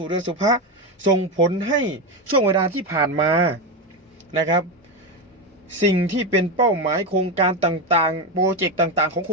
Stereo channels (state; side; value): normal; both; correlation 0.13